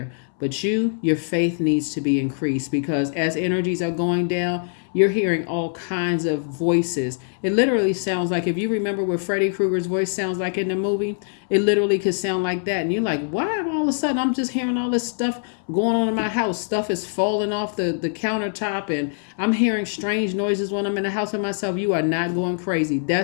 But your faith needs to be increased, because as energies are going down, you're hearing all kinds of voices. It literally sounds like, if you remember what Freddy Krueger's voice sounds like in the movie, it literally could sound like that. And you're like, why all of a sudden I'm just hearing all this stuff going on in my house? Stuff is falling off the countertop, and I'm hearing strange noises when I'm in the house with myself. You are not going crazy.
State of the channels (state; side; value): silent; right; 63 dB below the other